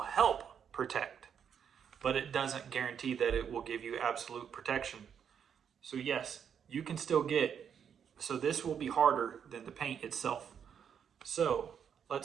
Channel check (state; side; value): quieter; left; 7.9 dB